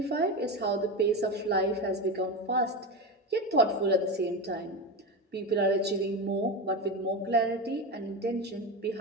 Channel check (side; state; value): both; normal; correlation 0.19